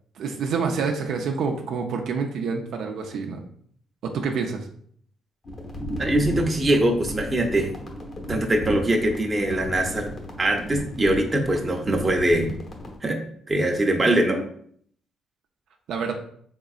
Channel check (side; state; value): both; normal; correlation 0.81